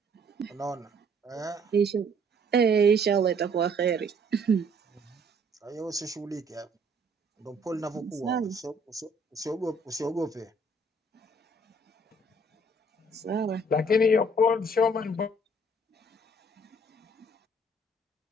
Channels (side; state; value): both; normal; correlation 0.61